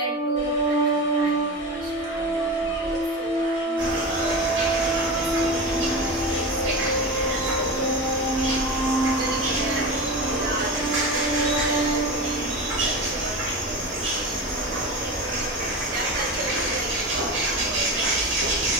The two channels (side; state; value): both; normal; correlation 0.25